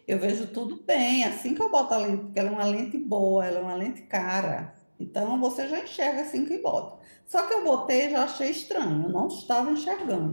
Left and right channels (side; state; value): both; inverted; correlation -1.00